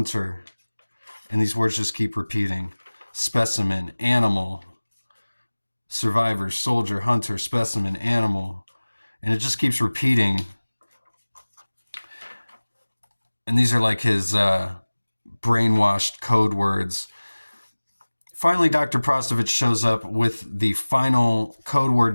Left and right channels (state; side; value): inverted; both; correlation -1.00